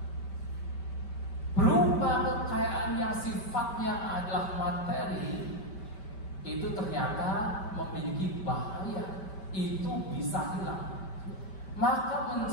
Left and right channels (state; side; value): late; right; 5.2 ms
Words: Berupa kekayaan yang sifatnya adalah materi, itu ternyata memiliki bahaya, itu bisa hilang. Maka